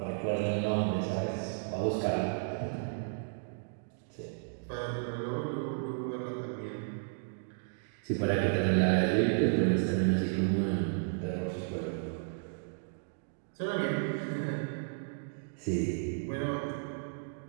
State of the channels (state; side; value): silent; left; digital silence